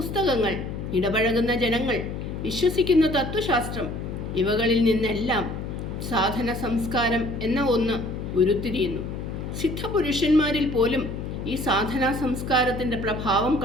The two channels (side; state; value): left; noise; hum, 6 dB below the sound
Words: ഇടപഴകുന്ന ജനങ്ങൾ, വിശ്വസിക്കുന്ന തത്വശാസ്ത്രം, ഇവകളിൽ നിന്നെല്ലാം സാധന സംസ്കാരം എന്ന ഒന്ന് ഉരുത്തിരിയുന്നു. സിദ്ധപുരുഷന്മാരിൽ പോലും ഈ സാധനാ സംസ്കാരത്തിൻ്റെ പ്രഭാവം